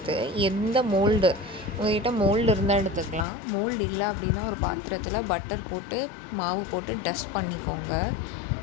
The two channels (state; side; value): drops out; right; at 3.2 s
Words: எந்த மோல்டு உங்கள்கிட்ட மோல்டு இருந்தால் எடுத்துக்கலாம். மோல்டு இல்லை அப்படின்னா ஒரு பாத்திரத்தில் பட்டர் போட்டு மாவு போட்டு டஸ்ட் பண்ணிக்கோங்க.